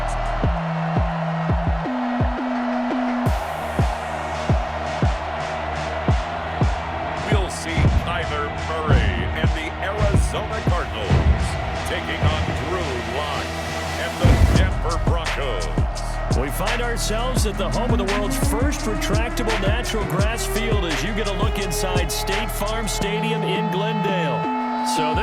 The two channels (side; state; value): both; identical; correlation 1.00